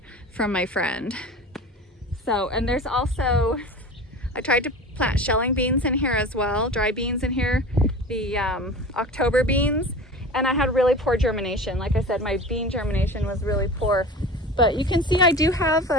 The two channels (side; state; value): both; normal; correlation 0.35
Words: from my friend. So, and there's also, I tried to plant shelling beans in here as well, dry beans in here, the October beans, and I had really poor germination. Like I said, my bean germination was really poor, but you can see I do have